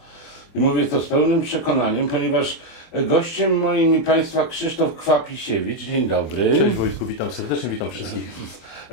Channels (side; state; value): right; late; 24 ms